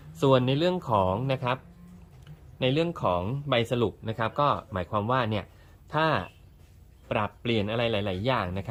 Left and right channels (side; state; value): both; identical; correlation 1.00